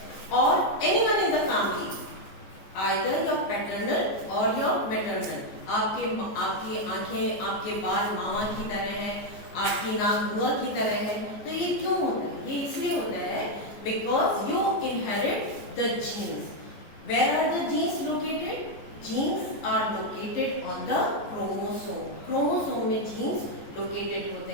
और anyone in the family either your paternal और योर मैटरनल. आपकी आंखें आपके बाल मामा की तरह हैं, आपकी नाक बुआ की तरह है. तो ये क्यों होता है? ये इसलिए होता है because you inherit the genes. Where are the genes located? Genes are located on the chromosome. Chromosome में जीन्स लोकेटेड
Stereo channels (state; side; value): late; right; 14 ms